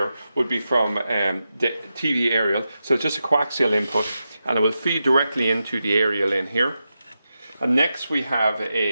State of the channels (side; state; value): both; inverted; correlation -0.89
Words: would be from the TV aerial, so it's just a coaxial input, and it will feed directly into the aerial in here. And next we have